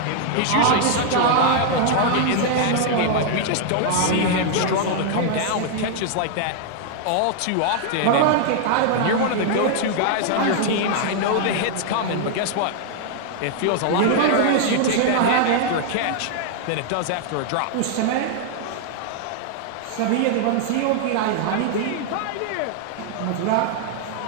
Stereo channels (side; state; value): both; different; correlation 0.00